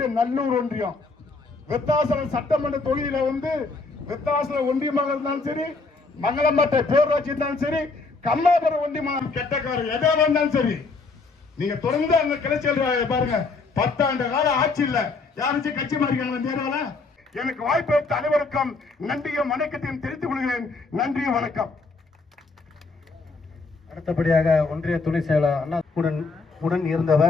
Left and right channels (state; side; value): quieter; right; 4.0 dB